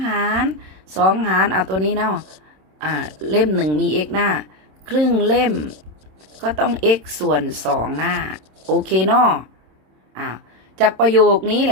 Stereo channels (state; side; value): late; left; 26 ms